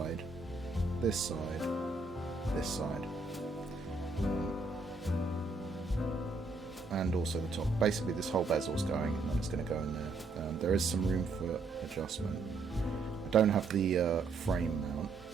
this side, this side, and also the top. Basically this whole bezel's going, and then it's going to go in there. There is some room for adjustment. I don't have the frame mount,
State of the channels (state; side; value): quieter; left; 3.8 dB